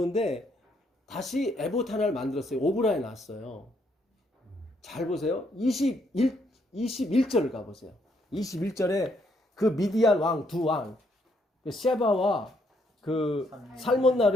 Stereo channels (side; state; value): both; normal; correlation 0.72